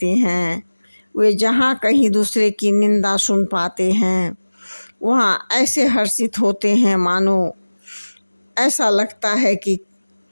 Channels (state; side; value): inverted; both; correlation -1.00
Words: हैं। वे जहाँ कहीं दूसरे की निंदा सुन पाते हैं वहाँ ऐसे हर्षित होते हैं मानो ऐसा लगता है कि